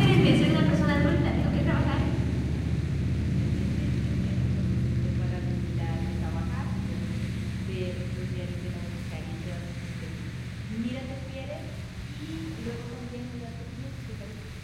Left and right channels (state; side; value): identical; both; correlation 1.00